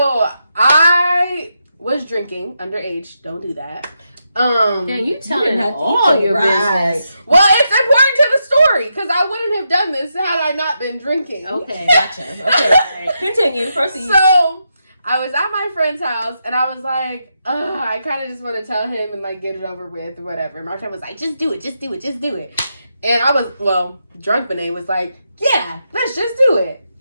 I was drinking underage. Don't do that. Then you telling have to all eat your right. business. Well, it's important to the story because I wouldn't have done this had I not been drinking. Okay. Gotcha. Okay. All right. Continue. Proceed. So I was at my friend's house and I was like, I kind of just want to tell him and like get it over with or whatever. My friend was like, just do it, just do it, just do it. And I was, drunk Benet was like, yeah, let's just do it.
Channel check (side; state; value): both; inverted; correlation -0.84